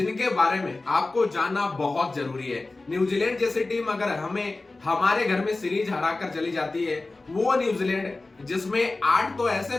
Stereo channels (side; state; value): right; quieter; 3.3 dB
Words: बारे में आपको जानना बहुत जरूरी है। न्यूजीलैंड जैसी टीम अगर हमें हमारे घर में सीरीज हराकर चली जाती है, वो न्यूजीलैंड जिसमें 8 तो